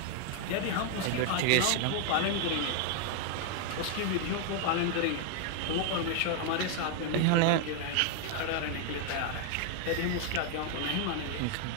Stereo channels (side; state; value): both; different; correlation 0.00